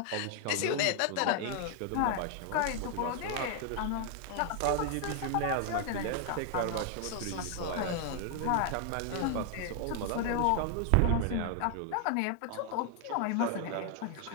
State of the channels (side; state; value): both; different; correlation 0.00